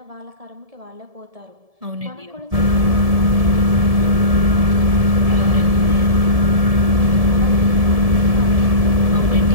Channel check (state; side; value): late; left; 1.7 ms